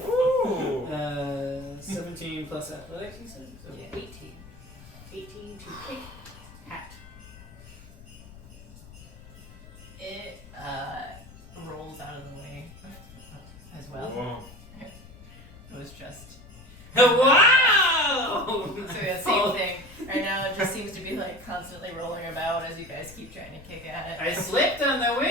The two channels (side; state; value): left; noise; rumble, 19 dB below the sound